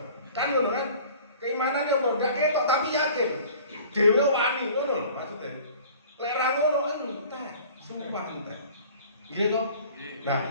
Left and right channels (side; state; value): both; inverted; correlation -0.47